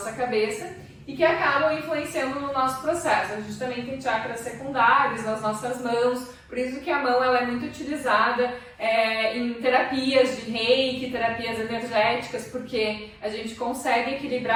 cabeça, e que acabam influenciando no nosso processo. A gente também tem chakras secundários nas nossas mãos, por isso que a mão ela é muito utilizada em terapias de reiki, terapias energéticas, porque a gente consegue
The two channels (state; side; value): identical; both; correlation 1.00